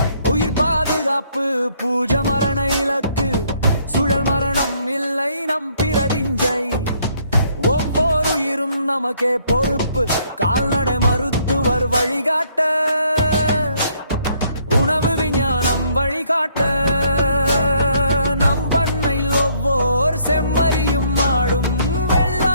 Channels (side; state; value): both; inverted; correlation -0.66